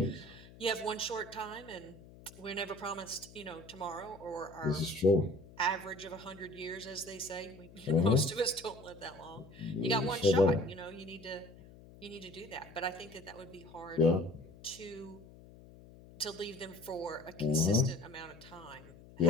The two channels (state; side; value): noise; left; hum, 20 dB below the sound